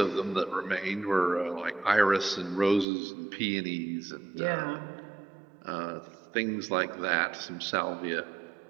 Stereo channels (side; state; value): left; drops out; at 2.9 s